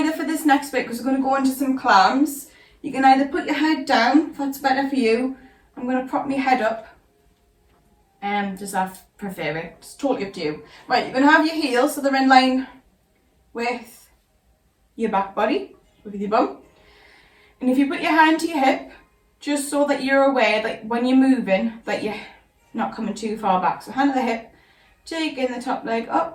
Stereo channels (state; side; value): identical; both; correlation 1.00